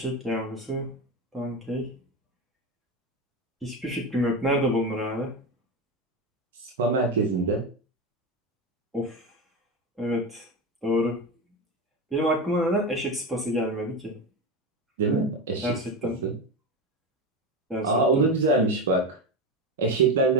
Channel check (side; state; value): both; normal; correlation 0.18